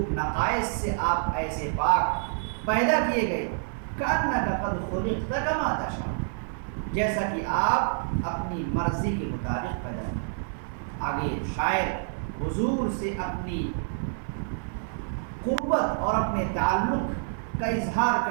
نقائص سے آپ ایسے پاک پیدا کیے گئے، كَأَنَّكَ قَدْ خُلِقْتَ كَمَا تَشَاءُ، جیسا کہ آپ اپنی مرضی کے مطابق پیدا ہوئے۔ آگے شاعر حضور سے اپنی قربت اور اپنے تعلق کا اظہار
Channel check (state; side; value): silent; left; 60 dB below the other